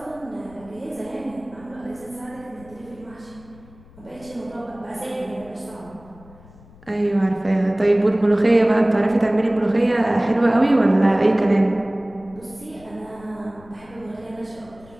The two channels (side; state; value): left; noise; rumble, 23 dB below the sound